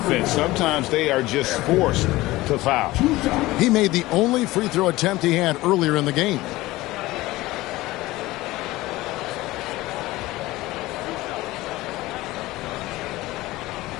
Sometimes they are just forced to foul. He made the only free throw attempt he had earlier in the game.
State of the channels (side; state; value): right; quieter; 18.6 dB